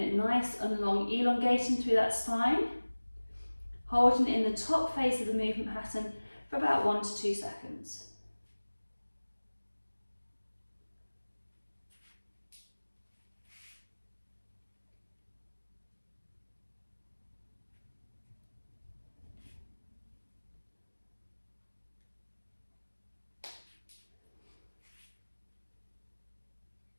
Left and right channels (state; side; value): inverted; both; correlation -1.00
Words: nice and long, elongating through that spine, holding it in the top phase of the movement pattern for about 1 to 2 seconds.